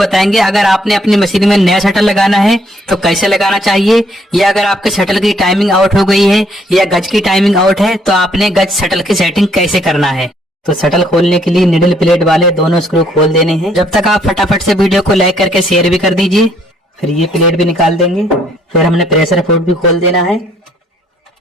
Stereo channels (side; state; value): both; normal; correlation 0.67